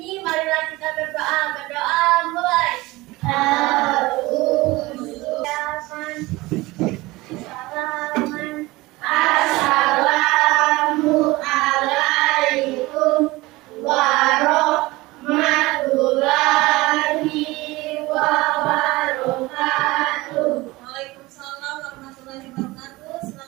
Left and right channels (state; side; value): quieter; left; 20.7 dB